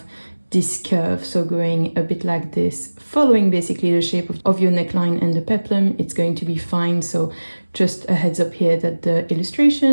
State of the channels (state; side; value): inverted; both; correlation -1.00